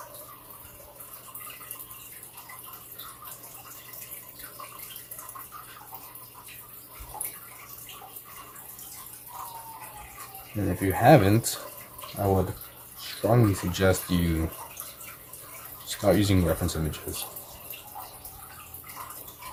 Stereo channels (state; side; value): identical; both; correlation 1.00